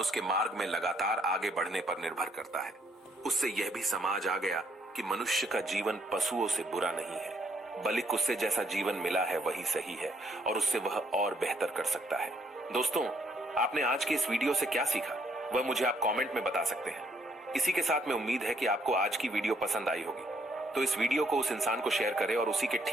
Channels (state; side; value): normal; both; correlation 0.70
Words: उसके मार्ग में लगातार आगे बढ़ने पर निर्भर करता है। उससे यह भी समझ आ गया कि मनुष्य का जीवन पशुओं से बुरा नहीं है, बल्कि उससे जैसा जीवन मिला है वही सही है और उससे वह और बेहतर कर सकता है। दोस्तों, आपने आज की इस वीडियो से क्या सीखा, वह मुझे आप कमेंट में बता सकते हैं। इसी के साथ मैं उम्मीद है कि आपको आज की वीडियो पसंद आई होगी, तो इस वीडियो को उस इंसान को शेयर करें और उसी के